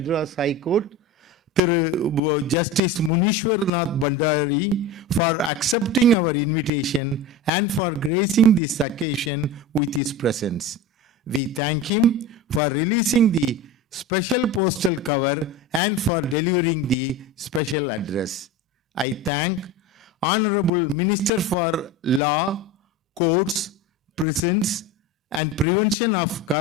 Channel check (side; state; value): both; normal; correlation 0.28